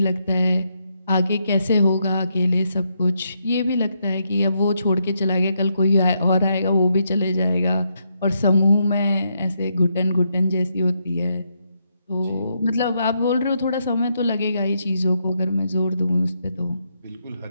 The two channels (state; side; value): inverted; both; correlation -0.79